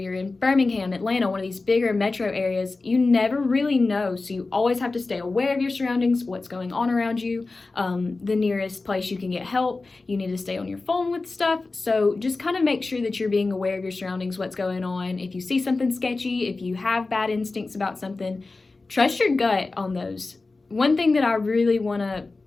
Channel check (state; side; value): quieter; right; 3.6 dB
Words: in Birmingham, Atlanta, one of these bigger metro areas, you never really know. So you always have to stay aware of your surroundings, what's going on around you, the nearest place you can get help. You need to stay on your phone with stuff. So just kind of make sure that you're being aware of your surroundings, what's going on. If you see something sketchy, if you have bad instincts about something, trust your gut on those. One thing that I really want to